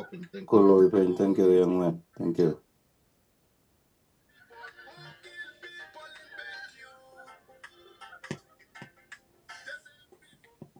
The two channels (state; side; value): identical; both; correlation 1.00